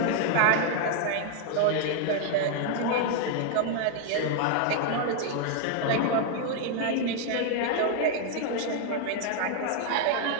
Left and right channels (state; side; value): different; both; correlation 0.00